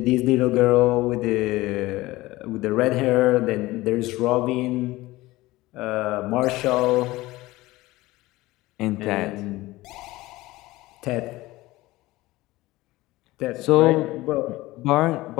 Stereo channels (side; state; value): right; quieter; 18.9 dB